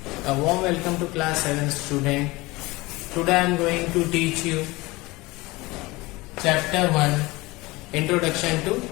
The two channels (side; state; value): right; quieter; 21.9 dB